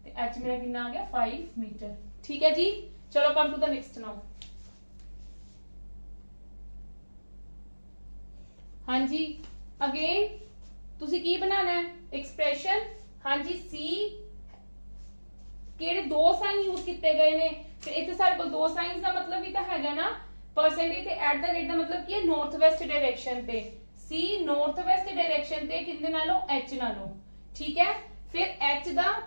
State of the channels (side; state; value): both; inverted; correlation -1.00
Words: ते h मेरा कितना आ गया 5 मीटर। ठीक है जी, चलो come to the next now. हाँ जी, अगेन तुसी की बनाना है एक्सप्रेशन। हाँ जी, सी केड़े दो साइन यूज किए गए ने, फिर इतने सारे को दो साइंस का मतलब भी तो है ना, परसेंटेज ते एट द रेट का मतलब की है नॉर्थ वेस्ट डायरेक्शन ते, सी नॉर्थ वेस्ट डायरेक्शन ते किंदे नालों एच नालों। ठीक है, फिर एच दा